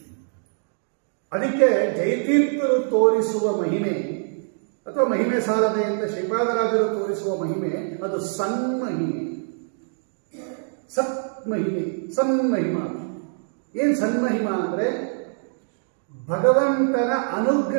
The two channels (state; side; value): silent; left; digital silence